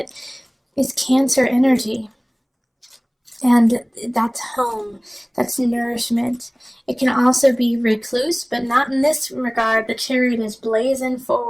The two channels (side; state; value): both; identical; correlation 1.00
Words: is Cancer energy. And that's home. That's nourishment. It can also be recluse, but not in this regard. The Chariot is blazing